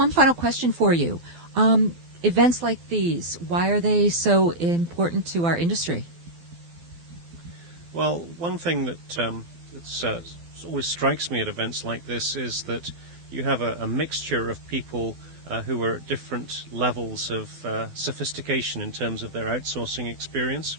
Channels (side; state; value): left; late; 12 ms